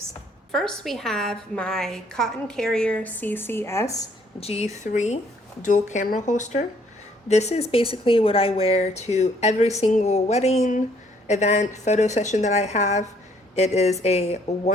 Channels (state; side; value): normal; both; correlation 0.64